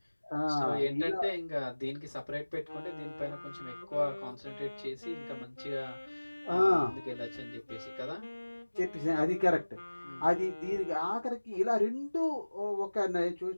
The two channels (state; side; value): inverted; both; correlation -1.00